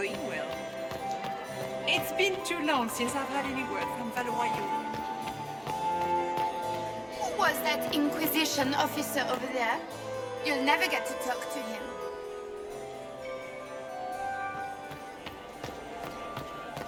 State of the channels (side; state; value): both; identical; correlation 1.00